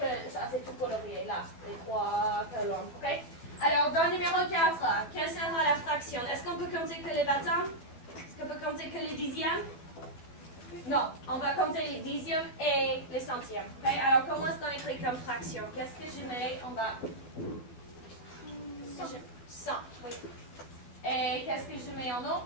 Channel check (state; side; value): late; right; 12 ms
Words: ça, c'est tout colorié, là, les 3 colonnes. OK? Alors, dans le numéro 4, quelle sera la fraction? Est-ce qu'on peut compter que les bâtons? Est-ce qu'on peut compter que les dixièmes? Non, on va compter les dixièmes et les centièmes. OK? Alors, comment est-ce qu'on écrit comme fraction? Qu'est-ce que je mets? On va... 100, oui. Et qu'est-ce que je mets en eau?